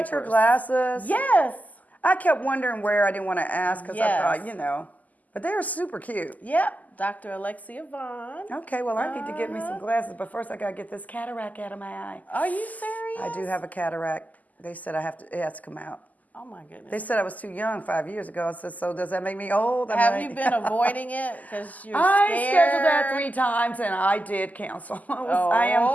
got your glasses? Yes. I kept wondering where. I didn't want to ask because Yes. I thought, but they were super cute. Yep, Dr. Alexia Vaughn. Okay, well, I need to get me some glasses, but first I got to get this cataract out of my eye. Are you serious? I do have a cataract. They said it has to come out. Oh my goodness. They said I was too young 5 years ago. I said, so does that make me old? Have you been avoiding it because you're I scared? scheduled that 3 times and I did cancel. I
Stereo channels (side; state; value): right; late; 0.079 ms